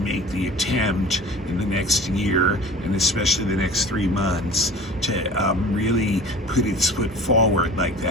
the attempt in the next year and especially the next 3 months to really put its foot forward like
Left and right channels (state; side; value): normal; both; correlation 0.42